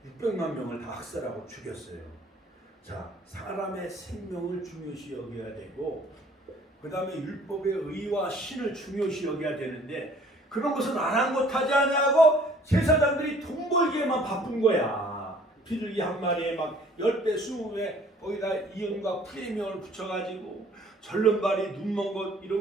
600만 명을 다 학살하고 죽였어요. 자, 사람의 생명을 중요시 여겨야 되고 그 다음에 율법의 의와 신을 중요시 여겨야 되는데 그런 것은 아랑곳하지 아니하고 제사장들이 돈 벌기에만 바쁜 거야. 비둘기 한 마리에 막 10배, 20배 거기다 이응과 프리미엄을 붙여가지고 절름발이 눈먼 것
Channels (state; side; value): normal; both; correlation 0.55